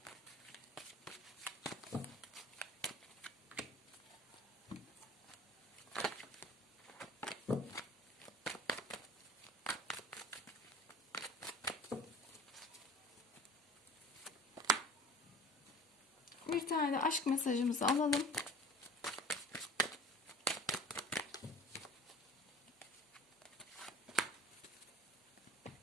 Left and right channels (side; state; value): both; normal; correlation 0.44